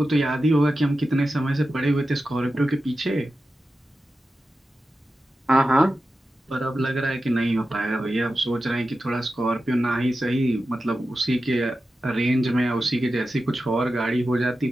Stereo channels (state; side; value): normal; both; correlation 0.92